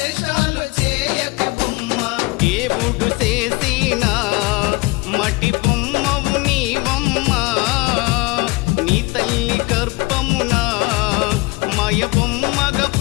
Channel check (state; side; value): quieter; right; 24.4 dB